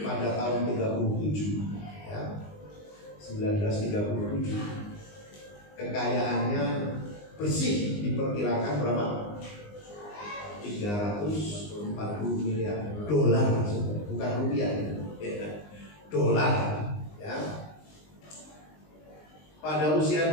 tahun 37 ya, 1937, kekayaannya bersih diperkirakan berapa? 340 miliar dolar, bukan rupiah ya. Dolar ya. Pada usia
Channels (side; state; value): right; late; 19 ms